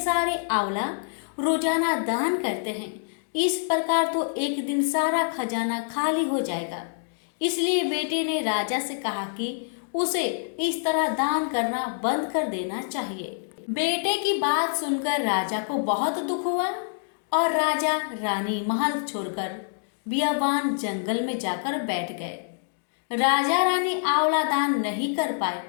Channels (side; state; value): right; silent; digital silence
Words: आंवला रोजाना दान करते हैं, इस प्रकार तो एक दिन सारा खजाना खाली हो जाएगा। इसलिए बेटे ने राजा से कहा कि उसे इस तरह दान करना बंद कर देना चाहिए। बेटे की बात सुनकर राजा को बहुत दुख हुआ और राजा रानी महल छोड़कर बियाबान जंगल में जाकर बैठ गए। राजा रानी आंवला दान नहीं कर पाए